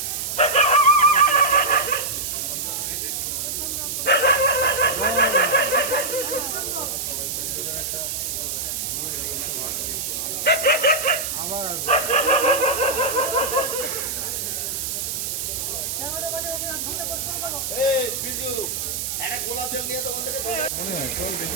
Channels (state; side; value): noise; right; hiss, 3 dB below the sound